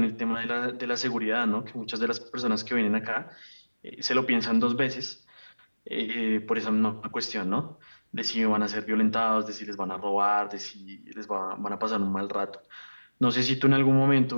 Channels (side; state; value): both; inverted; correlation -1.00